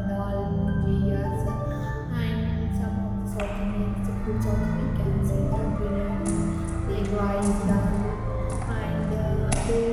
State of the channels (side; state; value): both; identical; correlation 1.00